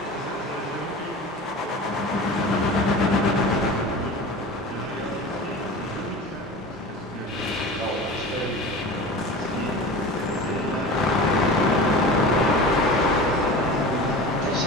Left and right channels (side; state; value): both; normal; correlation 0.35